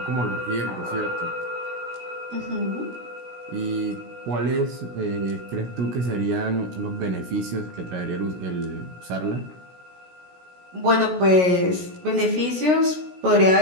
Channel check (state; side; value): late; left; 16 ms